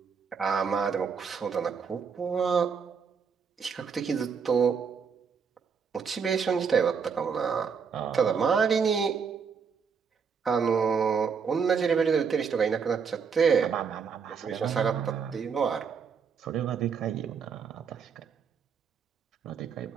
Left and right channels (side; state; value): left; quieter; 6.2 dB